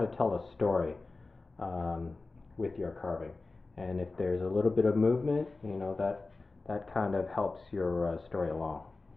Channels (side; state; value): right; quieter; 3.6 dB